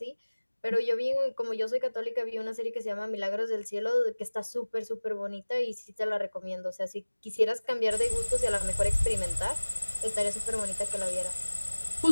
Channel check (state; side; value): inverted; both; correlation -1.00